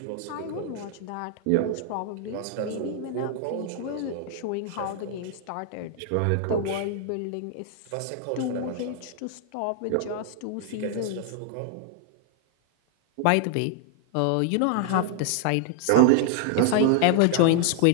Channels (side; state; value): both; different; correlation 0.00